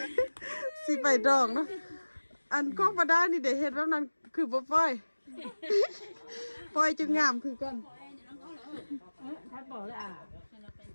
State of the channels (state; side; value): inverted; both; correlation -1.00